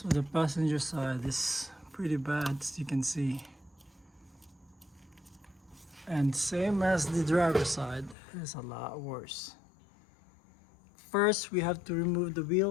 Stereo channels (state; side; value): drops out; right; at 8.2 s